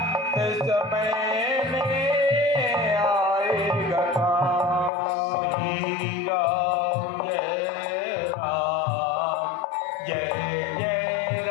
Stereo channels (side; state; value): right; drops out; at 4.9 s